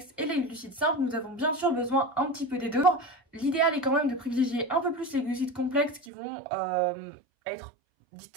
et les glucides simples, nous avons bien sûr besoin un petit peu des deux. L'idéal est quand même de privilégier un peu plus les glucides complexes qui vont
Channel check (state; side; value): drops out; left; at 6.1 s